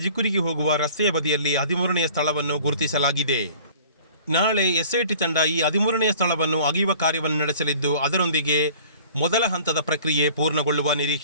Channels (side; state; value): both; inverted; correlation -0.47